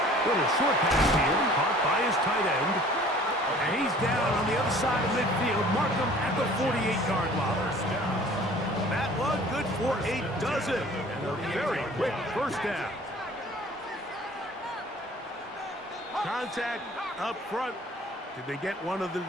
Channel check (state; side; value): normal; both; correlation 0.50